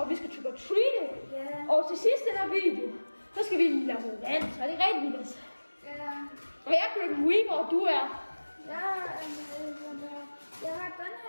vi skal trick or treat. Og til sidst i den her video, så skal vi lave noget vand, så er det rigtig vildt. Og jeg er Grim Reaper, og du er? Jeg har den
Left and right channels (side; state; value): both; inverted; correlation -1.00